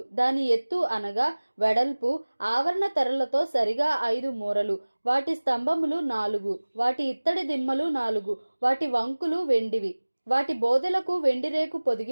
దాని ఎత్తు అనగా వెడల్పు ఆవరణ తెరలతో సరిగా 5 మూరలు. వాటి స్తంభములు 4, వాటి ఇత్తడి దిమ్మలు 4. వాటి వంకులు వెండివి. వాటి బోదెలకు వెండి రేకు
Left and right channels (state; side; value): inverted; both; correlation -1.00